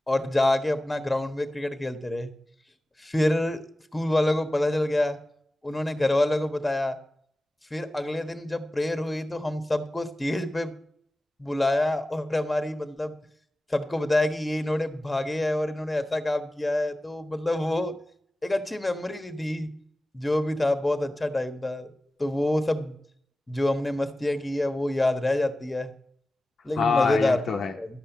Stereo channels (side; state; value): both; normal; correlation 0.95